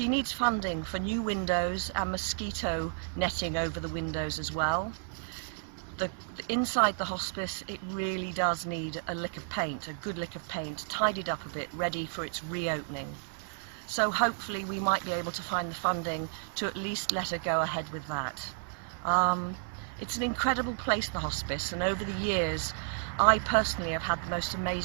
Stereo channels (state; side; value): silent; left; 56 dB below the other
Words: needs funding for new windows and mosquito netting over the windows as well. Inside the hospice, it really does need a lick of paint, a good lick of paint, tidied up a bit, ready for its reopening. So hopefully we might be able to find the funding to at least let her go ahead with that. It's an incredible place, the hospice, and over the years I personally have had the most